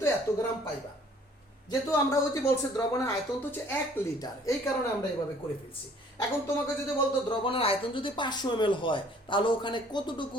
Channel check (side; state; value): both; normal; correlation 0.56